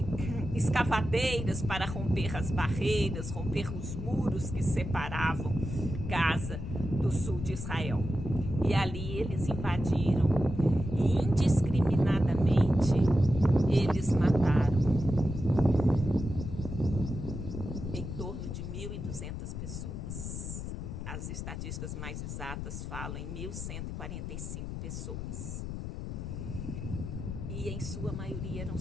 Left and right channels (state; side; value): noise; left; rumble, 6 dB below the sound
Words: escavadeiras para romper as barreiras, romper os muros que separavam Gaza do sul de Israel. E ali eles invadiram e indiscriminadamente eles mataram em torno de 1.200 pessoas. As estatísticas mais exatas falam em 1.145 pessoas. E em sua maioria eram